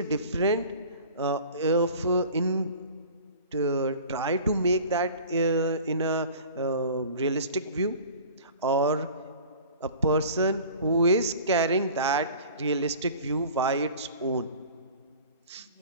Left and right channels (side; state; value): both; inverted; correlation -0.43